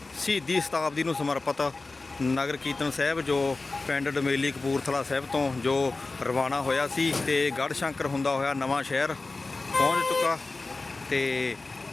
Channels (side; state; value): right; quieter; 3.5 dB